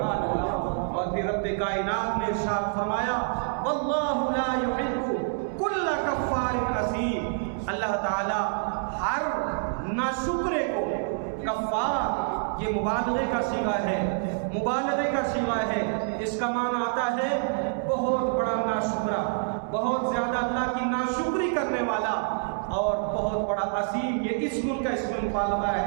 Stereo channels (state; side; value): silent; left; digital silence